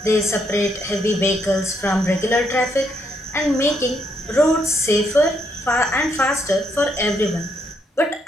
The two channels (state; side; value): normal; both; correlation 0.75